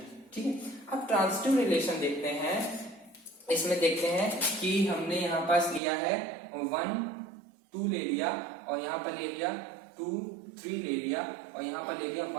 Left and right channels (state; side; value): drops out; left; at 5.8 s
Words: ठीक है। अब ट्रांजिटिव रिलेशन देखते हैं। इसमें देखते हैं कि हमने यहाँ पास लिया है 1 2 ले लिया, और यहाँ पर ले लिया 2 3 ले लिया, और यहाँ पर ले लिया